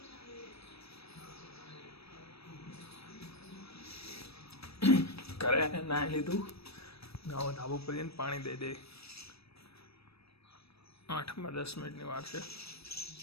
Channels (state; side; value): late; right; 0.78 ms